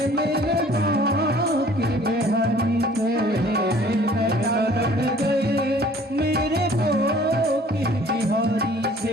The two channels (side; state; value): both; normal; correlation 0.53